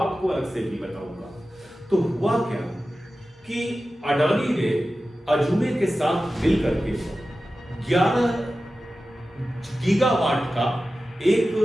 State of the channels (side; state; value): both; normal; correlation 0.94